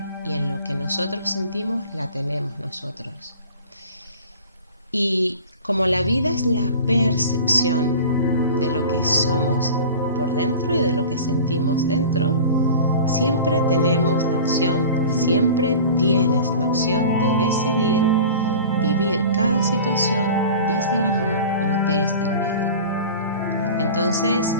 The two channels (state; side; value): inverted; both; correlation -0.39